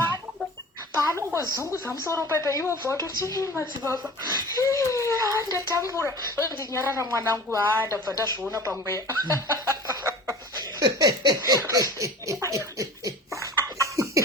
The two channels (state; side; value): normal; both; correlation 0.39